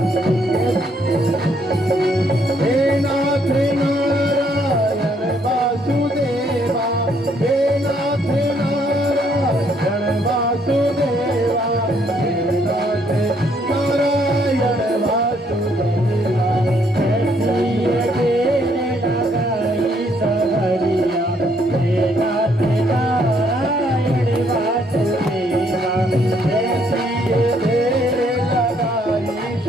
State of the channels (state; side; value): normal; both; correlation 0.69